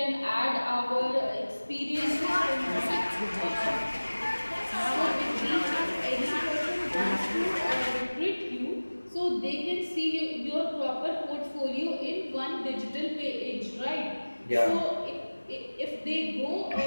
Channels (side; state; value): both; inverted; correlation -1.00